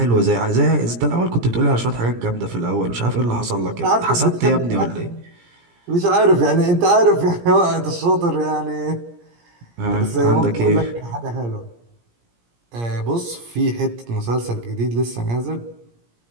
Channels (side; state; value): left; late; 17 ms